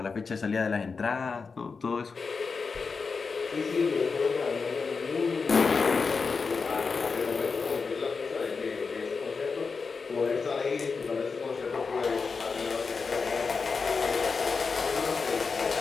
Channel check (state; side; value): quieter; right; 4.9 dB